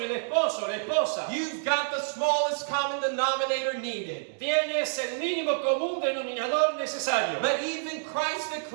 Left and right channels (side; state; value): left; silent; digital silence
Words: el esposo, la esposa, you've got the smallest common denominator needed. tienes el mínimo común denominador necesario. But even Christ